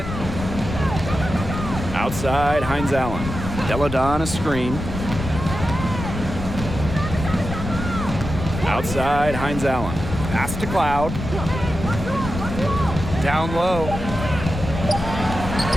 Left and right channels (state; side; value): noise; left; rumble, 7 dB below the sound